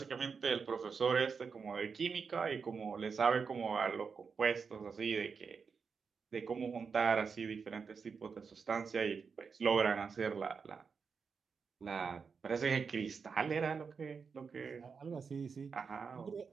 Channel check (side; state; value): left; quieter; 5.6 dB